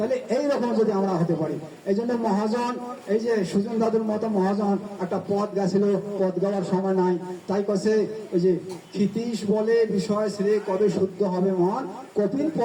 এইরকম যদি আমরা হতে পারি, এই জন্য মহাজন, এই যে সুজন দাদুর মতো মহাজন একটা পদ গেছিল, পদ গাওয়ার সময় নাই, তাই কাছে ওই যে ক্ষিতীশ বলে বিষয় শ্রে কবে শুদ্ধ হবে মন, কপিল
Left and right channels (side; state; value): both; identical; correlation 1.00